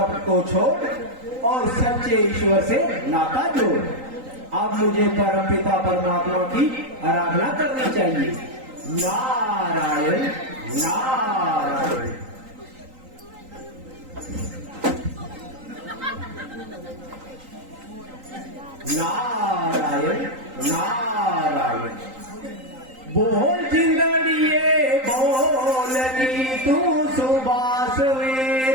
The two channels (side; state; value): left; late; 3.9 ms